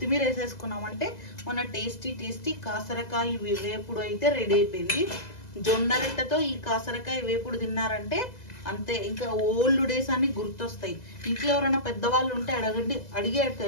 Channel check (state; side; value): late; right; 2.0 ms